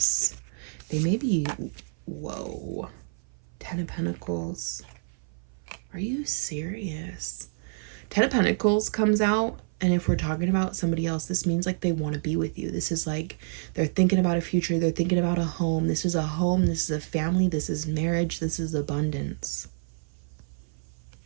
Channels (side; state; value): left; silent; 57 dB below the other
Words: They may be, whoa. Ten of Pentacles. Are you serious? Ten of Pentacles comes out, and if we're talking about somebody else, this means like they want to be with you. This is like they're thinking about a future. They're thinking about a home. This is a home. This is a family. This is marriage. This is abundance.